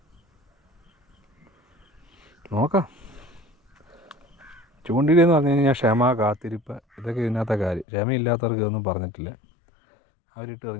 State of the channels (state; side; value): drops out; right; at 7.9 s